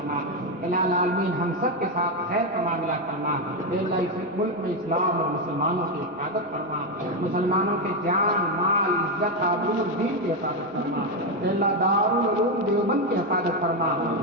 الہ العالمین ہم سب کے ساتھ خیر کا معاملہ فرما، اے اللہ اس ملک میں اسلام اور مسلمانوں کی حفاظت فرما، مسلمانوں کے جان مال عزت آبرو دین کی حفاظت فرما، اے اللہ دارالعلوم دیوبند کی حفاظت فرما،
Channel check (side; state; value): both; normal; correlation 0.07